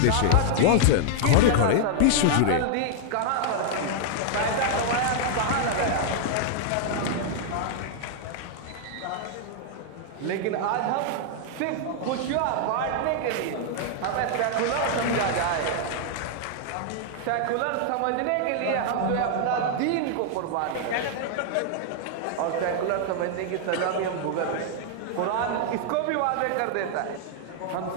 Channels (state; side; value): different; both; correlation -0.01